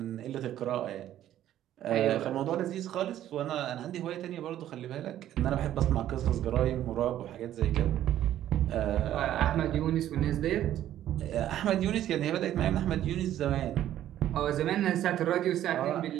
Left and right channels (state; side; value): quieter; left; 12.1 dB